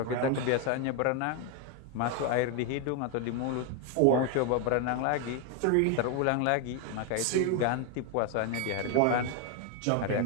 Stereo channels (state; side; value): different; both; correlation 0.01